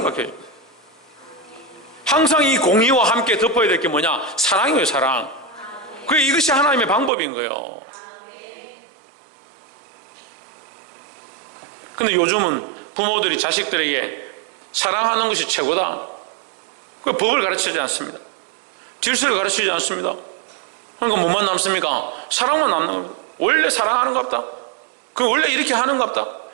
항상 이 공의와 함께 덮어야 될 게 뭐냐? 사랑이에요. 사랑. 이것이 하나님의 방법인 거예요. 근데 요즘은 부모들이 자식들에게 사랑하는 것이 최고다, 법을 가르치지 않습니다. 질서를 가르치지 않습니다. 그러니까 뭐만 남습니까? 사랑만 남는 겁니다. 원래 사랑하는가 보다, 원래 이렇게 하는가 보다,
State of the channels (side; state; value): left; drops out; at 7.1 s